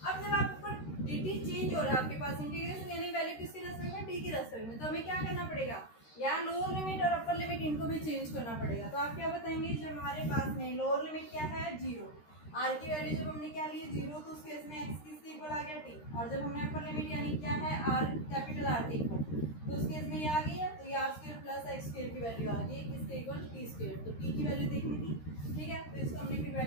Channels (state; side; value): late; right; 13 ms